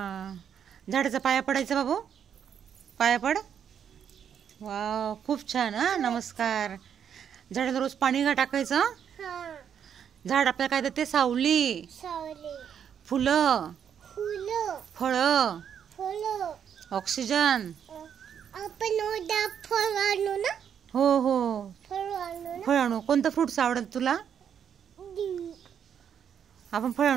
झाडाचा पाया पडायचा बाबू. पाया पड. वाव खूप छान. हा नमस्कार. झाडाला रोज पाणी टाकायचं. झाड आपल्याला काय देते. सावली, फुलं, फळं, ऑक्सिजन. हो हो फळ आणू. कोणतं फ्रुट्स आवडत तुला. आपण फळ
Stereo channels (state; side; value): quieter; left; 8.3 dB